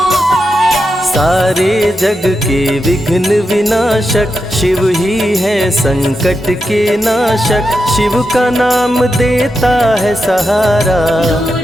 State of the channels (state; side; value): normal; both; correlation 0.87